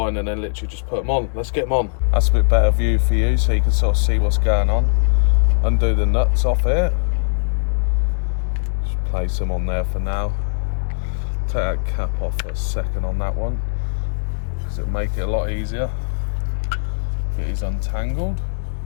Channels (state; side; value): silent; right; digital silence